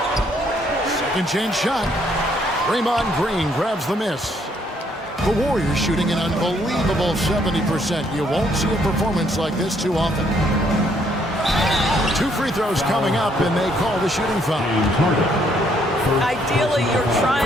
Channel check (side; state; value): both; normal; correlation 0.69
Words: Second chance shot. Draymond Green grabs the miss. The Warriors shooting an unbelievable 70%. You won't see a performance like this too often. 2 free throws coming up, and they call the shooting foul. Ideally, you're